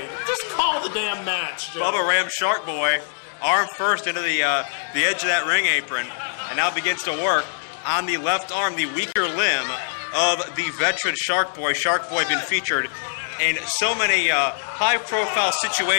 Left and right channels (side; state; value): right; silent; digital silence